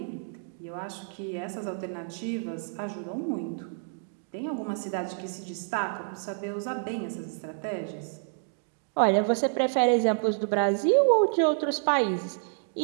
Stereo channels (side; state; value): left; silent; 59 dB below the other